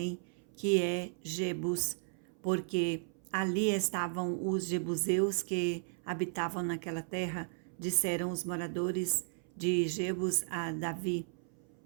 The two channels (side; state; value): left; silent; 54 dB below the other